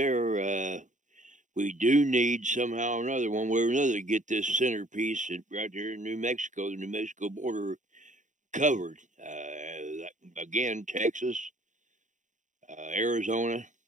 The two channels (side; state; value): left; late; 0.36 ms